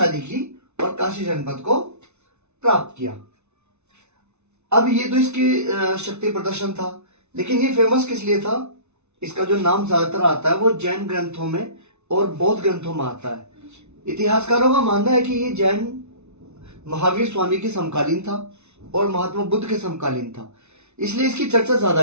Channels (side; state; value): left; late; 0.82 ms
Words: की और काशी जनपद को प्राप्त किया। अब ये तो इसकी शक्ति प्रदर्शन था, लेकिन ये फेमस किस लिए था? इसका जो नाम ज्यादातर आता है वो जैन ग्रंथों में और बौद्ध ग्रंथों में आता है। इतिहासकारों का मानना है कि ये जैन महावीर स्वामी के समकालीन था और महात्मा बुद्ध के समकालीन था, इसलिए इसकी चर्चा ज्यादा